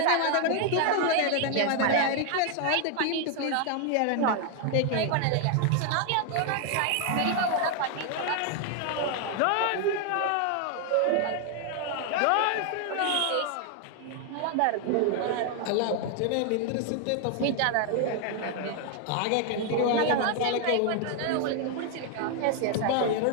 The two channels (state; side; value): different; both; correlation 0.00